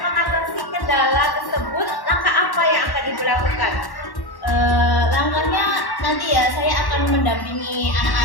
kendala tersebut, langkah apa yang akan Ibu lakukan? Langkahnya nanti ya saya akan mendampingi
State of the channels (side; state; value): right; late; 1.1 ms